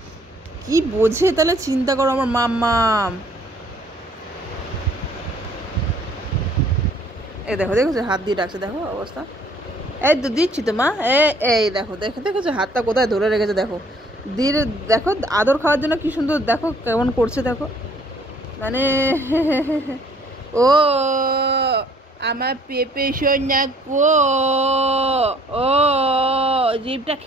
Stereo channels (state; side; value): normal; both; correlation 0.59